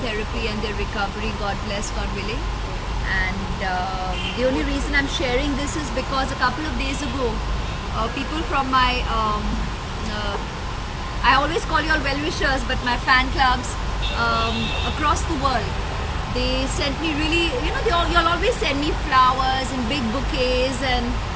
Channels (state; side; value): identical; both; correlation 1.00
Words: and their recovery, God bless, God willing. And the only reason I'm sharing this is because a couple of days ago people from my I always call you all well-wishers, but my fan clubs across the world, they sent me really, you'll always send me flowers and big bouquets and